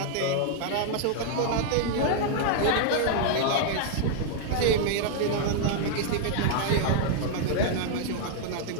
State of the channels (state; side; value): different; both; correlation -0.01